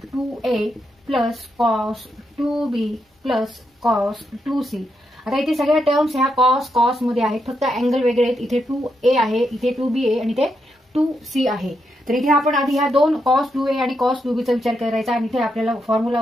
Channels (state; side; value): normal; both; correlation 0.82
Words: 2A plus cos 2B plus cos 2C. आता इथे सगळ्या टर्म्स ह्या cos मध्ये आहेत, फक्त अँगल वेगळे आहेत. इथे 2A आहे, इथे 2B आहे आणि इथे 2C आहे. तर इथे आपण आधी ह्या दोन cos 2A आणि cos 2B चा विचार करायचा आणि इथे आपल्याला फॉर्म्युला